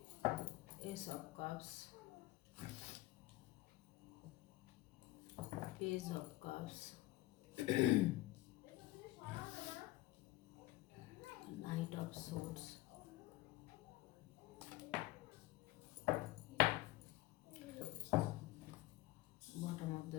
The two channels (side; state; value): right; quieter; 17.8 dB